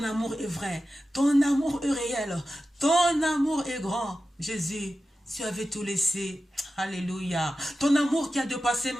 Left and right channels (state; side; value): normal; both; correlation 0.93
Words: amour est vrai, ton amour est réel, ton amour est grand. Jésus, tu avais tout laissé. Alléluia. Ton amour qui a dépassé